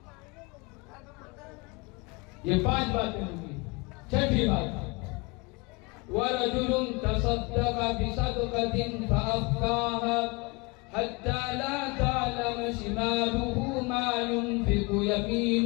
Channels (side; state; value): right; quieter; 27.5 dB